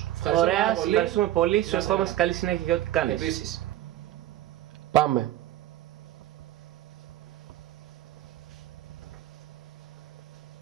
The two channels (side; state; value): left; quieter; 13.9 dB